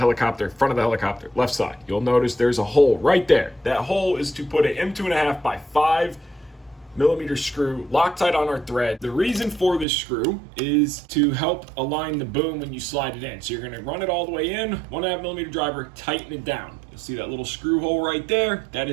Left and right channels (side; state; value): left; drops out; at 9.9 s